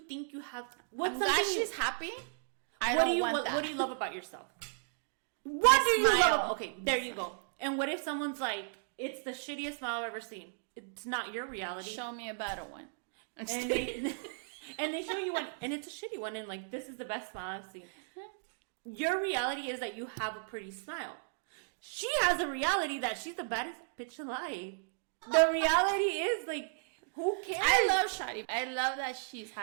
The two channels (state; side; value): silent; left; digital silence